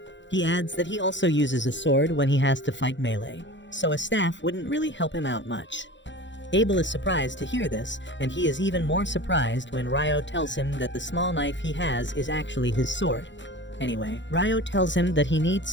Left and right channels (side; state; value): right; late; 0.54 ms